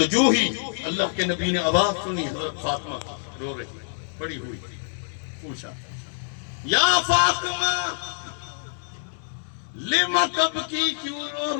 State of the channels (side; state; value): right; silent; 61 dB below the other